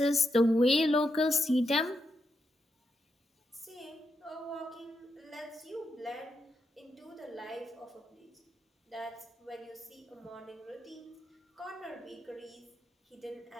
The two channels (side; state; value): both; normal; correlation 0.83